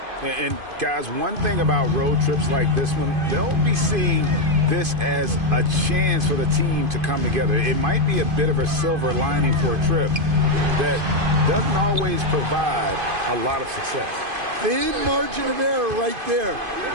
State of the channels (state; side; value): late; left; 2.5 ms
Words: And guys, one thing about road trips like this one, they'll be seeing this as a chance for the team to come together. It might be a bit of a silver lining for a trip that doesn't always provide a lot of success. Thin margin of error right there.